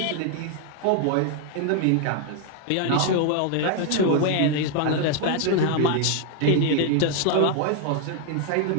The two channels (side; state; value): both; different; correlation 0.00